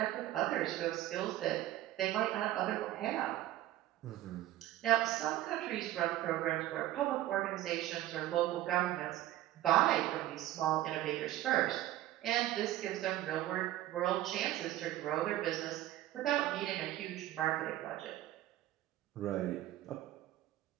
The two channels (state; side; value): quieter; left; 14.4 dB